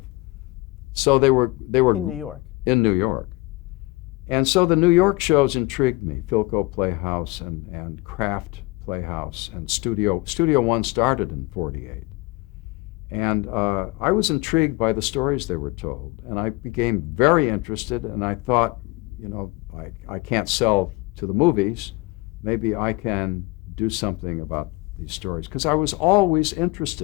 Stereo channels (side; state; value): right; quieter; 23.1 dB